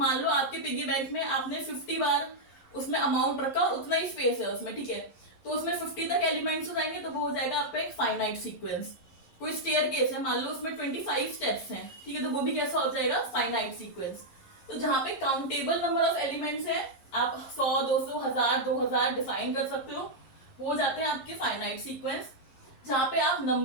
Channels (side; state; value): right; late; 10 ms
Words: लो आपके पिगी बैंक में आपने 50 बार उसमें अमाउंट रखा, उतना ही स्पेस है उसमें, ठीक है। तो उसमें 50 तक एलिमेंट्स हो जाएंगे तो वो हो जाएगा आपका एक फाइनाइट सीक्वेंस। कोई स्टेयरकेस है, मान लो उसमें 25 स्टेप्स हैं, ठीक है, तो वो भी कैसा हो जाएगा? Finite sequence. तो जहां पे काउंटेबल नंबर ऑफ एलिमेंट्स है, आप 100, 200, 1000, 2000 डिफाइन कर सकते हो, वो हो जाते हैं आपके फाइनाइट सीक्वेंस। जहां पे आप